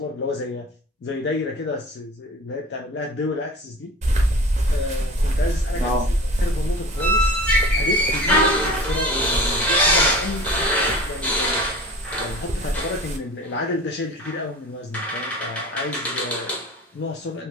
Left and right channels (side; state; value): both; normal; correlation 0.39